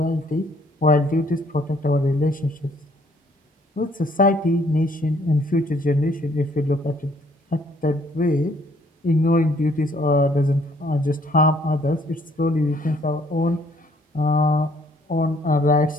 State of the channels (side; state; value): both; normal; correlation 0.63